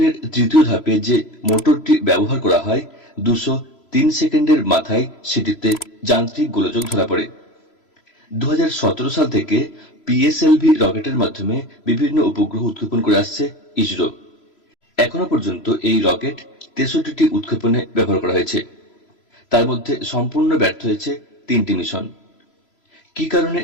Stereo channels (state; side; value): late; right; 3.0 ms